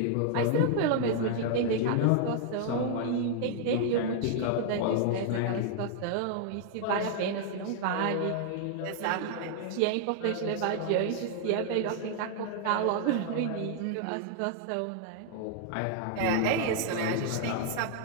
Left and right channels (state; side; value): different; both; correlation 0.00